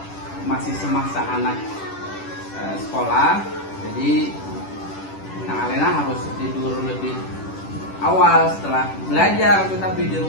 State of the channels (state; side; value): late; right; 10 ms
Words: masih semasa anak sekolah. Jadi Nak Alena harus tidur lebih awal setelah belajar, tetapi di